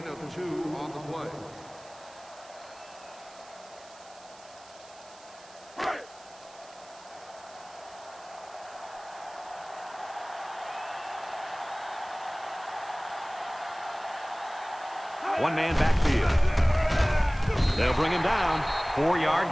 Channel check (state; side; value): noise; right; hiss, 22 dB below the sound